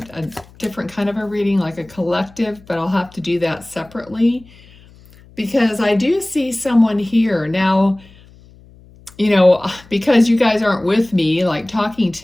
different kind of a reading, like a collective, but I'll have to do that separately because I do see someone here. Now, because you guys aren't with me, like talking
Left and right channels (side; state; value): left; noise; hum, 25 dB below the sound